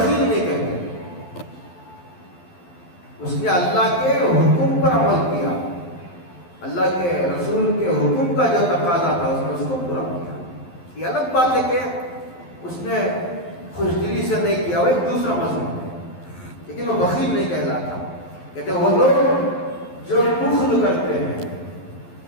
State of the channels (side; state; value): right; late; 12 ms